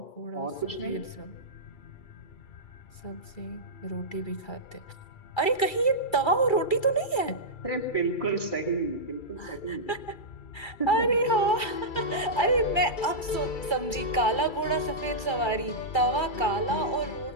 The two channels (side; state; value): right; late; 2.3 ms